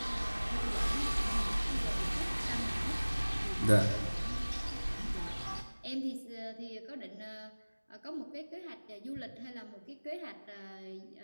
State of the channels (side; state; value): both; inverted; correlation -1.00